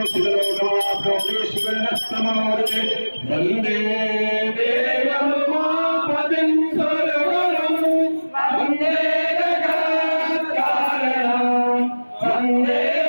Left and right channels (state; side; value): inverted; both; correlation -1.00